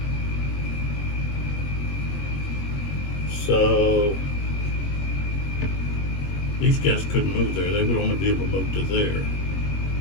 So these guys couldn't move there. They would only be able to move to there.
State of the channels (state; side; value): late; right; 21 ms